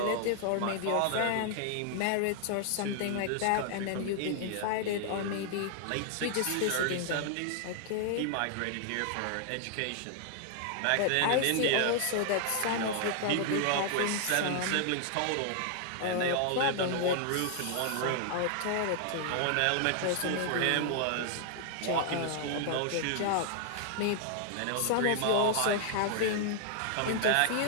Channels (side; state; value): both; different; correlation 0.00